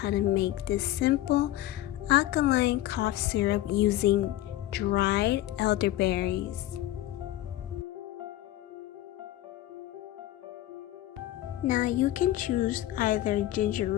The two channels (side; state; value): right; quieter; 14.8 dB